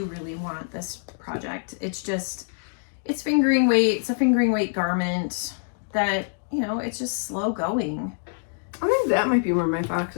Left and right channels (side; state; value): right; silent; digital silence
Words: really want this project. It's fingering weight. It's a fingering weight garment that, it's just slow going. I think that might be where my